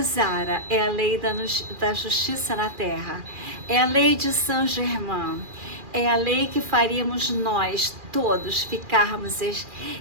Zara é a lei da justiça na Terra, é a lei de Saint-Germain, é a lei que faríamos nós todos ficarmos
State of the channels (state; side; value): late; left; 2.4 ms